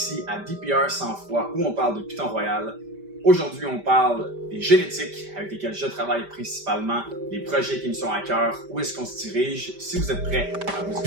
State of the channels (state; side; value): late; left; 5.1 ms